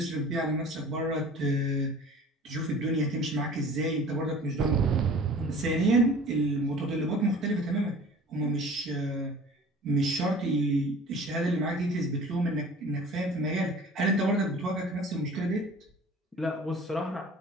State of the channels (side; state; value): both; normal; correlation 0.44